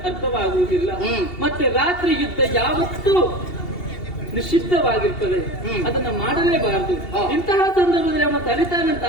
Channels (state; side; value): late; right; 2.7 ms